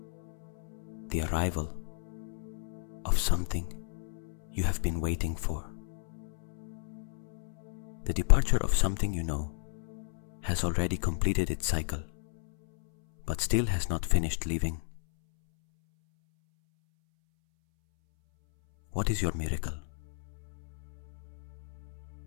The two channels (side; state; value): right; silent; 56 dB below the other